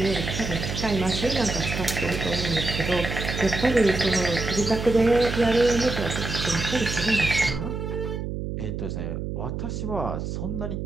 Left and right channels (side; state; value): right; noise; hum, 4 dB below the sound